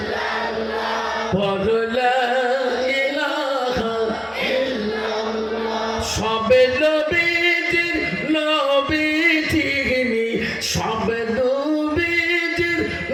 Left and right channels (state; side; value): identical; both; correlation 1.00